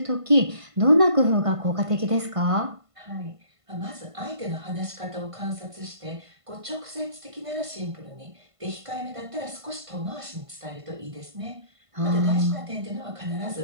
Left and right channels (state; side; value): late; left; 1.5 ms